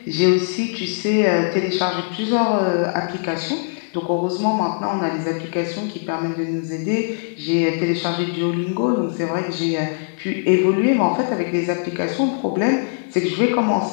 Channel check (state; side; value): silent; right; digital silence